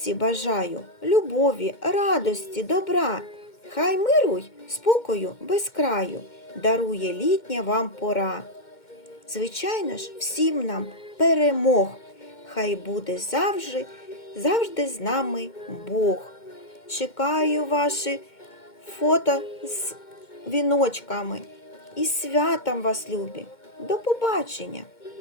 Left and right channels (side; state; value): right; late; 2.1 ms